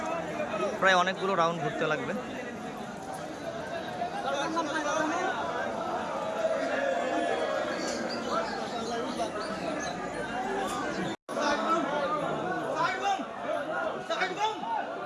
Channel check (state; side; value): identical; both; correlation 1.00